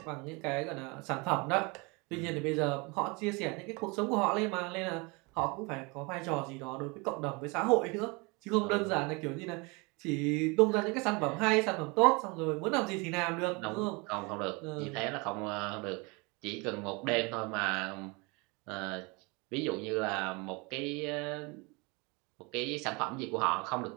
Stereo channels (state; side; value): quieter; left; 28.0 dB